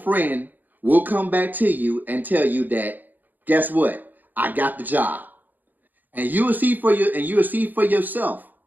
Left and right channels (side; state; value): left; late; 0.085 ms